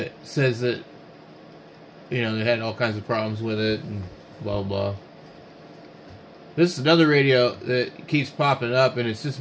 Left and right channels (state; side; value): identical; both; correlation 1.00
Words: says that, you know, they had all kinds of problems with it and blah blah. This is another radio that keeps popping up, and it's just